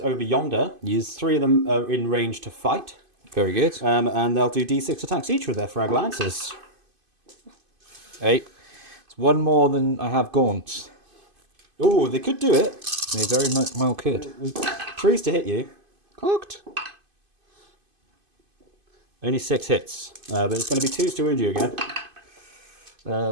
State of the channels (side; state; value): left; late; 2.5 ms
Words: over yonder. Yes. 3 of them are in range to fight. Very good. And they'll do d6 attacks each with their frag lances. 8. It's 1 more than I have gaunts. Oh, they could do it. They very well could. 3s to hit you. Cocked. Only 6 hits. But it's going to be 2s to wound you again.